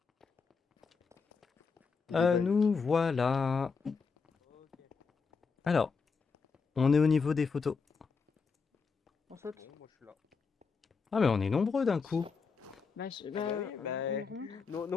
Nous voilà. Alors, on est au niveau des photos. On saute. Moi, je suis là. Ah, mais on est nombreux d'un coup. Bah, Nous,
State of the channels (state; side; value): quieter; right; 5.1 dB